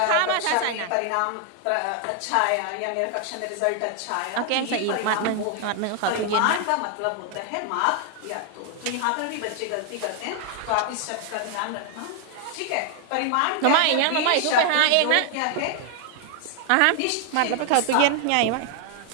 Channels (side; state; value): both; different; correlation 0.00